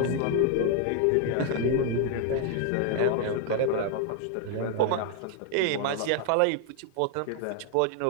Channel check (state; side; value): different; both; correlation 0.00